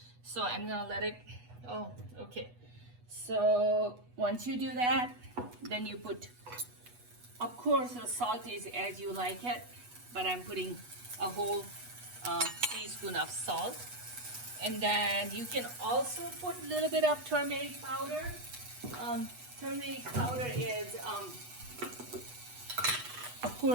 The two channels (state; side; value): late; left; 8.2 ms